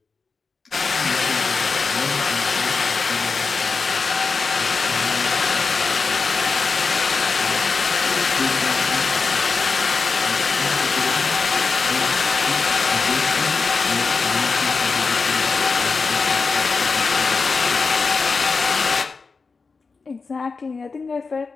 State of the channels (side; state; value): right; quieter; 4.6 dB